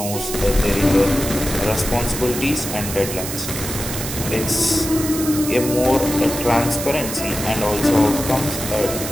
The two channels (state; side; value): noise; right; hiss, 6 dB below the sound